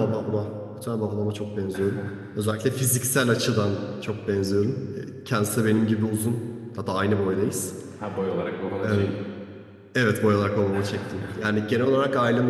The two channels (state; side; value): identical; both; correlation 1.00